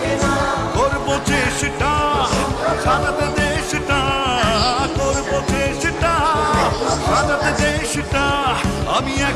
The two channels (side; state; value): both; identical; correlation 1.00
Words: করবো চেষ্টা সাজাতে দেশটা, করবো চেষ্টা সাজাতে দেশটা। আমি